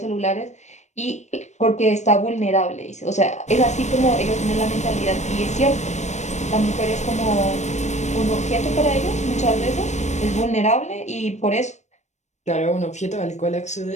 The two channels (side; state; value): right; late; 0.34 ms